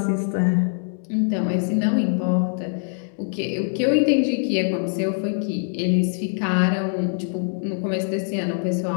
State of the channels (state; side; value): silent; right; 63 dB below the other